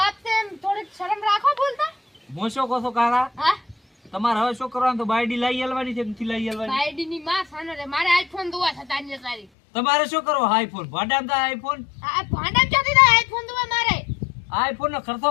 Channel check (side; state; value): right; drops out; at 9.5 s